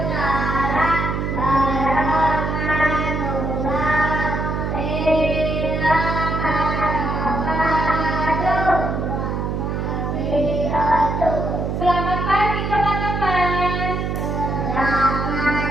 Selamat pagi teman-teman.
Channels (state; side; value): noise; right; hum, 1 dB below the sound